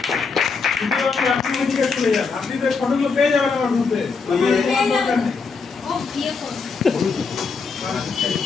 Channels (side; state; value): right; quieter; 4.9 dB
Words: আপনি তো ফটোগুলো পেয়ে যাবেন আমার গ্রুপে। ও বিয়ে করবে